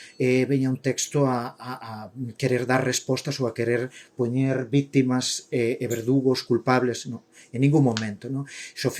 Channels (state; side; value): identical; both; correlation 1.00